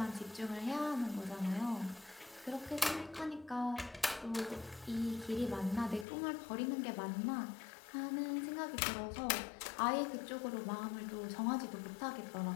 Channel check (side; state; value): right; drops out; at 6.1 s